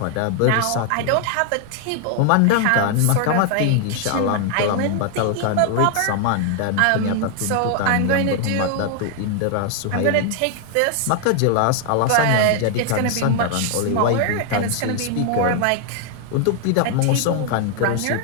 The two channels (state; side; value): different; both; correlation 0.00